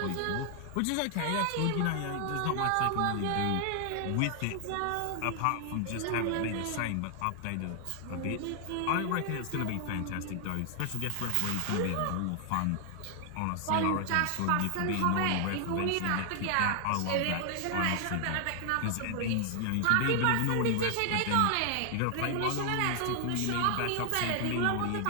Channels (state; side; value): different; both; correlation 0.00